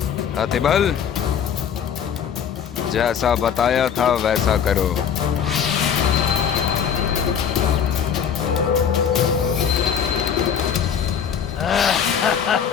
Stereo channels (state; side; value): quieter; right; 7.9 dB